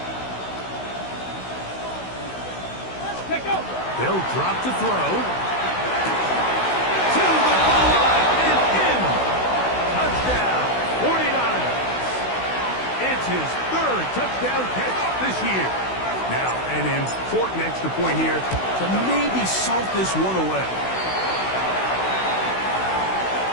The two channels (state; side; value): late; right; 16 ms